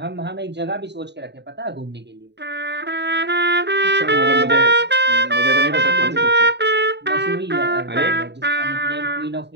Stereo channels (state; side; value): late; left; 0.50 ms